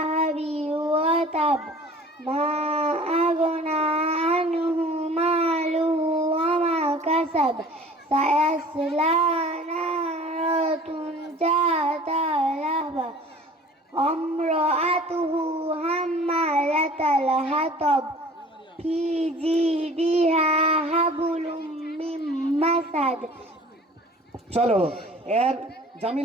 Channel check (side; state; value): both; normal; correlation 0.46